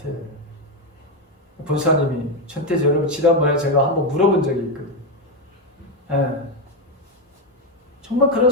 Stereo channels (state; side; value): normal; both; correlation 0.08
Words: 본사님이 전태지 여러분 지난번에 제가 한번 물어본 적이 있거든요. 정말 그런